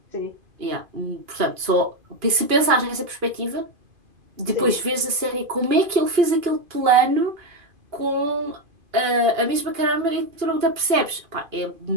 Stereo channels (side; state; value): left; late; 2.5 ms